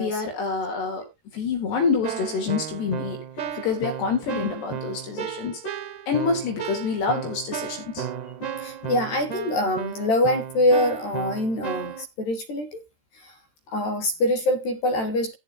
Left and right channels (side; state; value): right; late; 13 ms